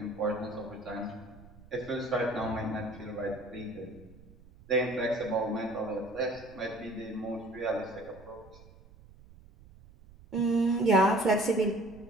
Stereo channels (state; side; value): noise; right; rumble, 22 dB below the sound